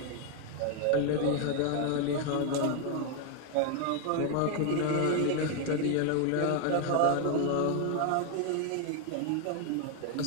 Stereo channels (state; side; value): different; both; correlation 0.00